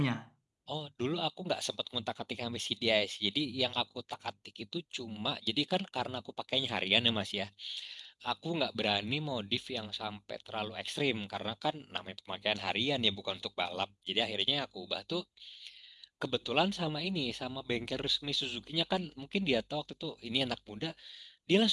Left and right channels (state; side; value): identical; both; correlation 1.00